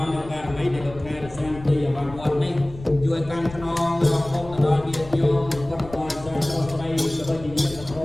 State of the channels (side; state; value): left; noise; rumble, 16 dB below the sound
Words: ង្គការមីដែលលោកខែរសាទីអវវត្តនេះជួយកាន់ខ្នងរកគុំទៅដល់ញាតិញោមពុទ្ធបរិស័ទដល់ស្រីក៏ដូចជាញាតិធ